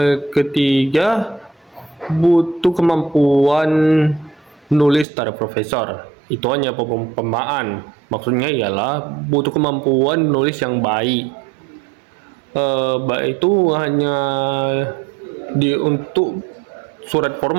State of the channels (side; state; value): left; drops out; at 5.1 s